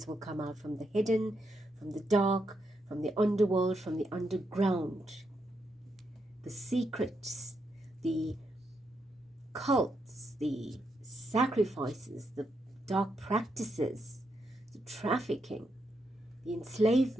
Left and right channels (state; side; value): normal; both; correlation 0.81